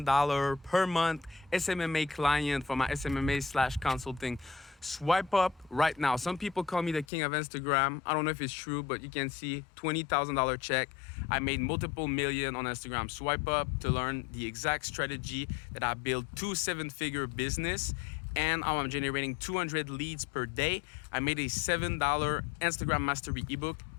per month SMMA client for my SMMA/consulting. Swipe up right now. Some people call me the king of Instagram. I don't know if it's true, but you can see $20,000 check. I made multiple million on Instagram. Swipe up to learn the exact strategy that I built 2 7-figure business, and I'm generating 200 leads per day. I made a $7 Instagram mastery ebook.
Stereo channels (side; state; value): right; drops out; at 7.1 s